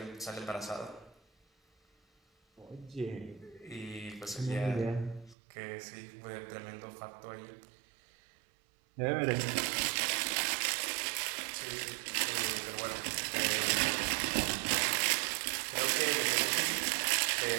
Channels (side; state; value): left; drops out; at 5.4 s